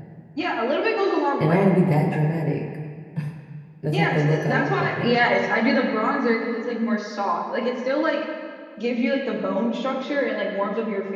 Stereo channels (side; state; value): both; identical; correlation 1.00